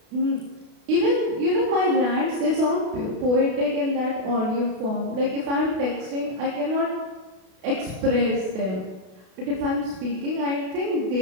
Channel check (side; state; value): left; late; 32 ms